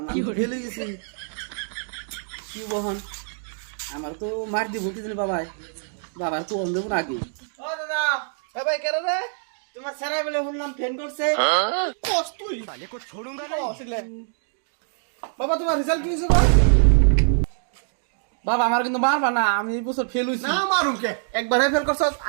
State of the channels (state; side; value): silent; left; digital silence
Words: আমি ফেল হয়ে গেছি। কি বহন আমার তো মার দিব কি জানি বাবাই, বাবার তো অন্ধ আগে। ও দাদা এ ভাই কেন রে তোমার সারা বেলে শুনলাম ফেন করছে। কোস তুই তাহলে কো छोड़ूंगा नहीं বাবা তোমার রেজাল্ট কি হইছে গো বাবা আমার কিন্তু মারবা না, আমি এই বছর ফেল হইছি। না মারুম কে একবার ফেল করছ